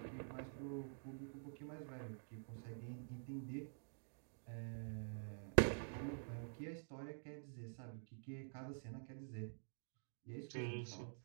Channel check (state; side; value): silent; left; digital silence